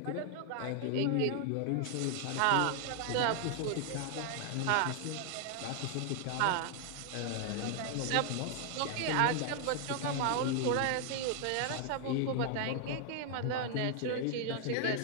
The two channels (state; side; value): different; both; correlation 0.00